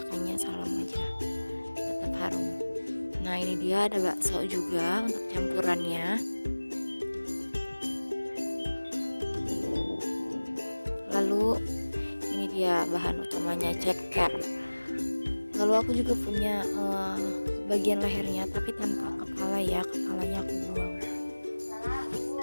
salam aja, tetap harum. Nah, ini dia, ada bakso juga untuk campurannya. Lalu ini dia bahan utamanya, ceker. Lalu aku juga punya bagian lehernya tapi tanpa kepala ya, kepalanya aku buang.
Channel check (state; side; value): inverted; both; correlation -1.00